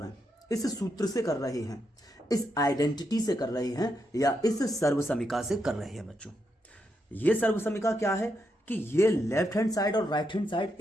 हैं, इस सूत्र से कर रहे हैं, इस आइडेंटिटी से कर रहे हैं, या इस सर्वसमीका से कर रहे हैं। बच्चों, ये सर्वसमीका क्या है कि ये लेफ्ट हैंड साइड और राइट हैंड साइड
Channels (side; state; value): both; normal; correlation 0.82